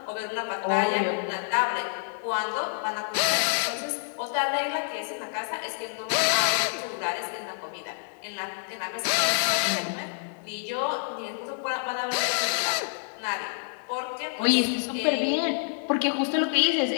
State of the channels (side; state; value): right; silent; digital silence